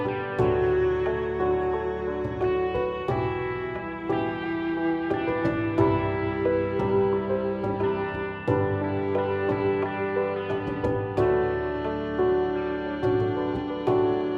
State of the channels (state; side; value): identical; both; correlation 1.00